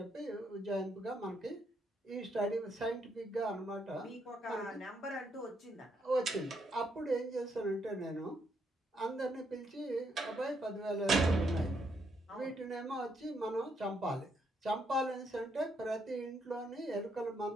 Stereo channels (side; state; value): both; normal; correlation 0.75